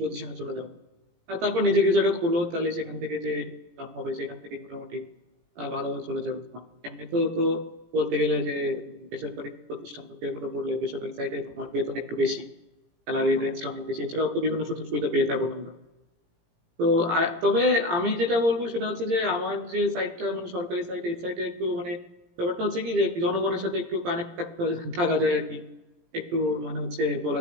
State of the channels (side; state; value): left; late; 17 ms